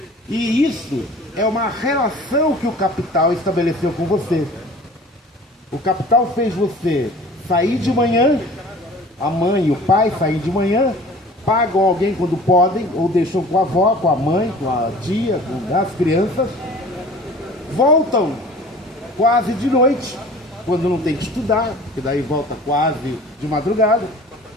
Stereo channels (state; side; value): normal; both; correlation 0.45